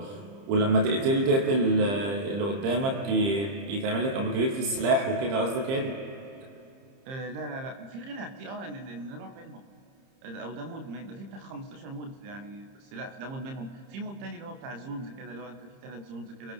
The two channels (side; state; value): left; late; 30 ms